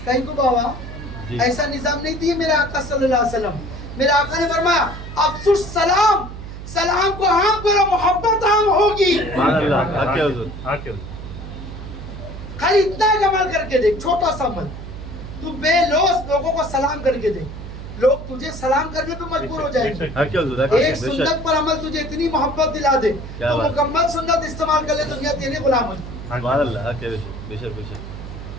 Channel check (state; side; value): noise; right; hum, 11 dB below the sound